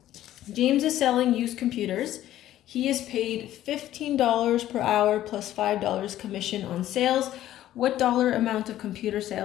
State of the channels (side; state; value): right; quieter; 13.2 dB